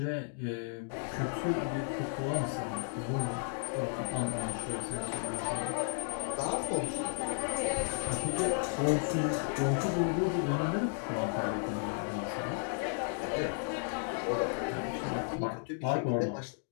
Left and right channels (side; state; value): right; silent; digital silence